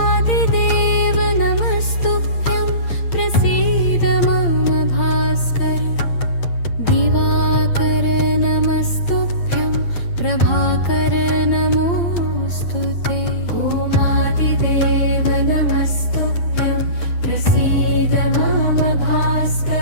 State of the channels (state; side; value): late; right; 8.8 ms